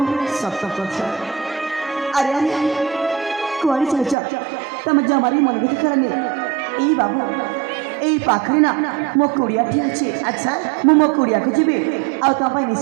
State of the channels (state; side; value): drops out; left; at 4.2 s